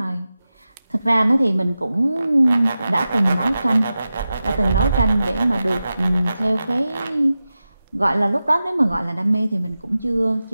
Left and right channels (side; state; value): both; inverted; correlation -0.93